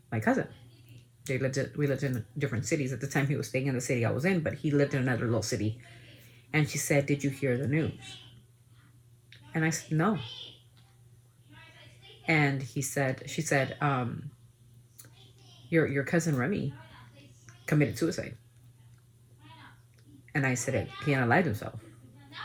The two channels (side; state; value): both; identical; correlation 1.00